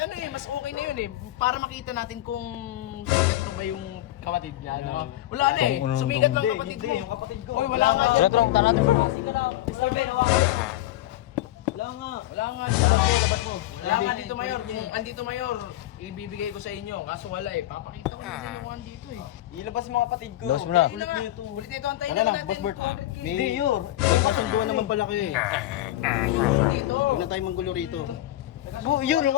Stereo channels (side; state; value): right; quieter; 15.0 dB